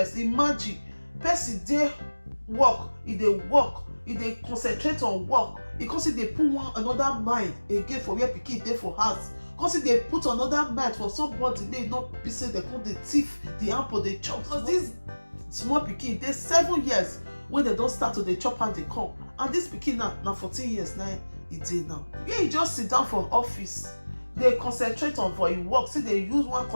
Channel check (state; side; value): inverted; both; correlation -1.00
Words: Imagine person dey work, e dey concentrate on work. E come see dey put another mind again for where pikin dey for house. Because they put another mind for somebody, they not be say they put the thief, the apple, they chop. Because this small pikin, they 7 years when they don't start to the chop and they come. And this pikin now 14 years now, he did now. Yeah, he just sit down for office. They concentrate on for his work. See, they use one